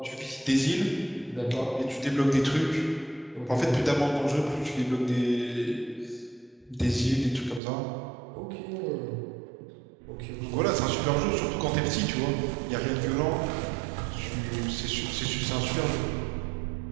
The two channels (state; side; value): drops out; left; at 7.6 s